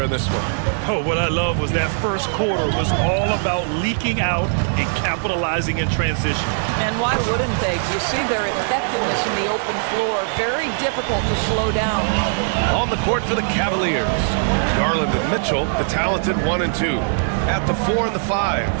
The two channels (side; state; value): left; silent; digital silence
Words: in this one? Oh, what I love was that first quarter was all about leaking out and capitalizing in transition. And why wouldn't they? You see their effectiveness in the open floor. Very difficult to slow down. On the court for the Cavaliers, Garland and Mitchell, the talented 1 and 2. At the 4 and the 5,